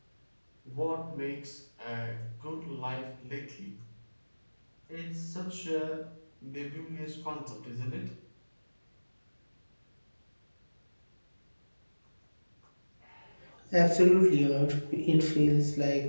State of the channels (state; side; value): inverted; both; correlation -1.00